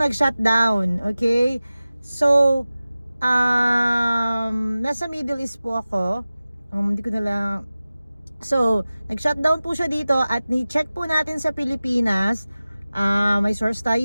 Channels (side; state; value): both; inverted; correlation -0.96